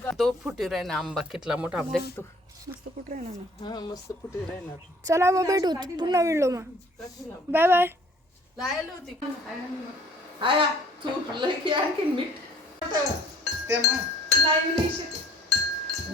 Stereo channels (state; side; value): normal; both; correlation 0.54